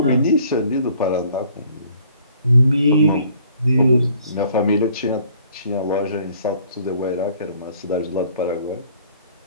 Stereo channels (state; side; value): inverted; both; correlation -0.58